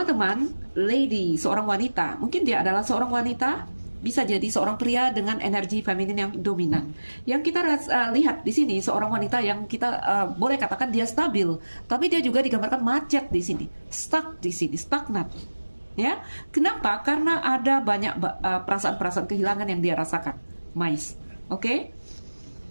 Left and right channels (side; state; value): both; inverted; correlation -1.00